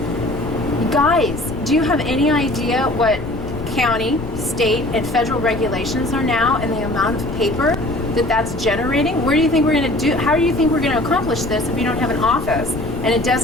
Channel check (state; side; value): noise; left; rumble, 9 dB below the sound